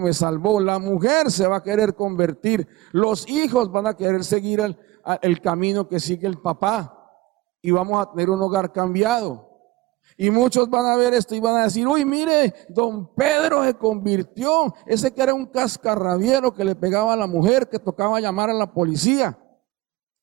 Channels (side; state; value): left; quieter; 19.5 dB